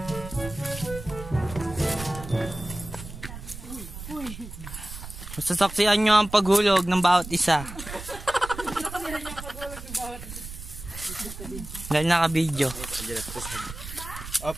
Sasaksihan nyo ang paghulog ng bawat isa. Dahil naka-video.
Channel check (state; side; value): noise; right; rumble, 11 dB below the sound